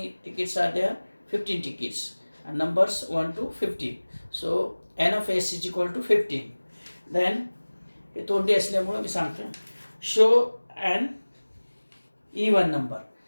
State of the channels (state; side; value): inverted; both; correlation -1.00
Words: tickets are there, 15 tickets, numbers 1 to 15. So N of S is equal to 15. Then हे तोंडी असल्यामुळं मी सांगतो, शो अँड इवन नंबर.